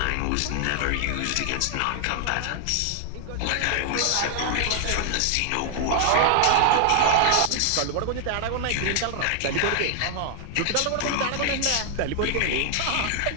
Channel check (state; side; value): different; both; correlation 0.00